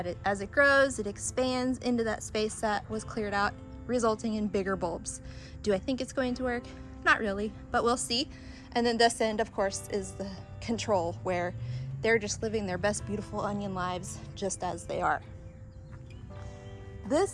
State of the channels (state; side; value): identical; both; correlation 1.00